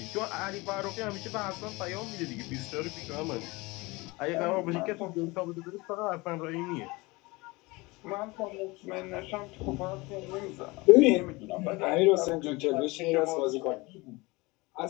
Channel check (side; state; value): right; quieter; 23.7 dB